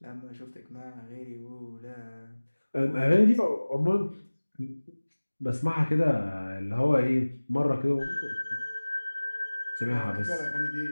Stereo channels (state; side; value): inverted; both; correlation -1.00